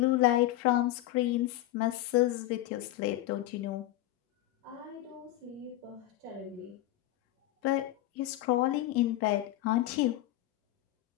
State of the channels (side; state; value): right; quieter; 15.3 dB